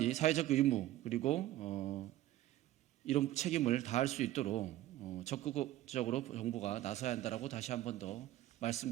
사회적 의무 그리고 이런 책임을 다할 수 있도록 적극적으로 정부가 나서야 한다라고 다시 한 번 더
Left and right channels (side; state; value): left; quieter; 14.7 dB